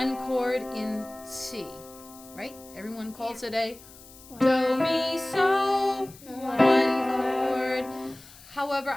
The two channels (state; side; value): noise; left; hiss, 21 dB below the sound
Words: chord in C, right? Everyone calls it a do, mi, so, 1 chord. However,